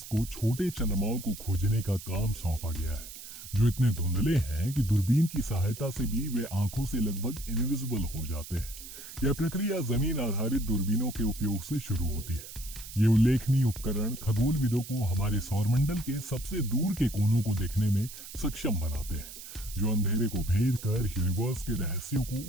को छोटे चंद्रमाओं को खोजने का काम सौंपा गया है, जो इतने धुंधले हैं कि दूरबीन की सहायता से भी वे आंखों से लगभग इनविजिबल हो जाते हैं। यह प्रक्रिया जमीन आधारित दूरबीनों के उपयोग से शुरू होती है। ये उल्लेखनीय उपकरण खगोलविदों को हमारे सौरमंडल के सबसे दूर के कोनों को देखने में सक्षम बनाते हैं, जो अंधेरे को भेद कर यूनिवर्स के रहस्यों को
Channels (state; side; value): noise; right; hiss, 13 dB below the sound